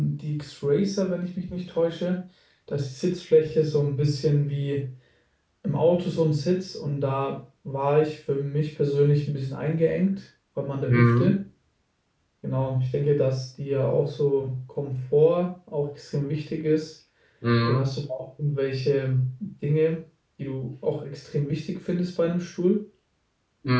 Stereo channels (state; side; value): identical; both; correlation 1.00